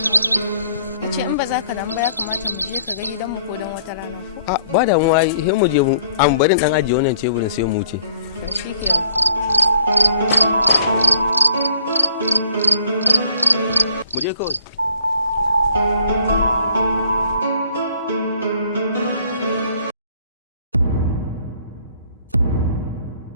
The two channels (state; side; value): inverted; both; correlation -0.59